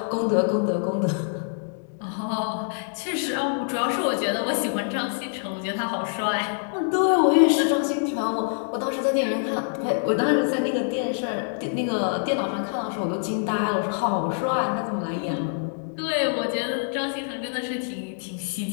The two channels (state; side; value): silent; right; digital silence